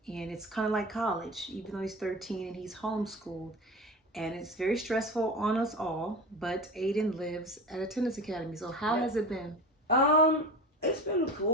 and it's kind of like college, even though he's 13 and he's homeschooled. And it's very stressful on us all, but Aiden lives at a tennis academy. So how has it been? It's been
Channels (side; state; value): both; normal; correlation 0.30